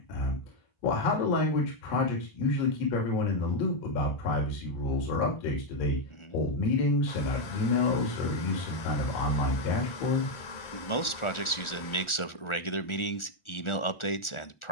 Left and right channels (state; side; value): late; right; 1.4 ms